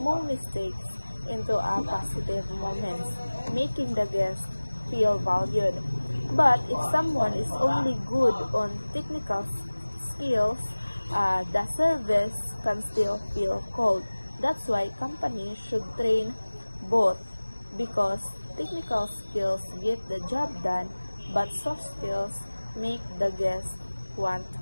mistakes into a positive moments, making the guest feel valued. But if someone is only good on technical skills, the service can still feel cold. That's why companies should train both, because technical skills get the job done, but soft skills make the guest want to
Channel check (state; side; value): inverted; both; correlation -1.00